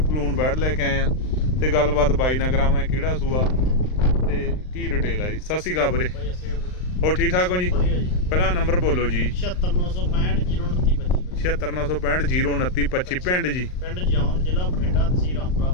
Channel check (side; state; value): right; late; 39 ms